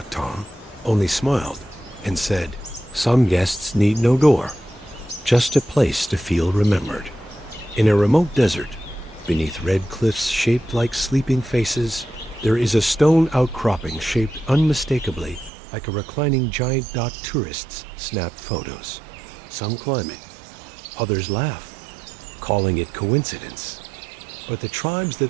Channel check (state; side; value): drops out; left; at 15.5 s